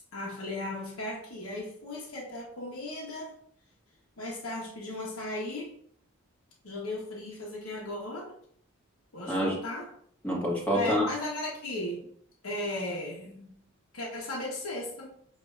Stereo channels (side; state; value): both; normal; correlation 0.34